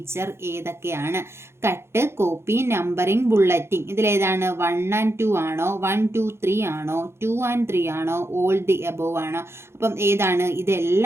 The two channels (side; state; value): left; late; 0.12 ms